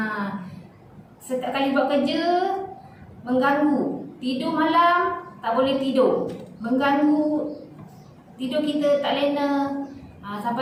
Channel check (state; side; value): identical; both; correlation 1.00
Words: Setiap kali buat kerja mengganggu. Tidur malam tak boleh tidur, mengganggu tidur kita tak lena.